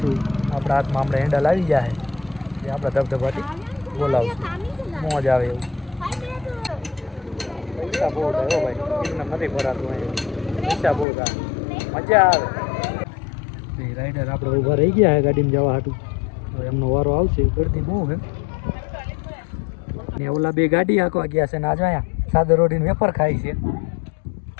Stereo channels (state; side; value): drops out; right; at 11.1 s